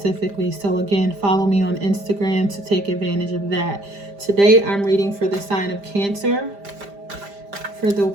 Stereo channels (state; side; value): late; left; 5.0 ms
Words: So again, follow me on Instagram to take advantage of that. Today I'm reading for the sign of Cancer for the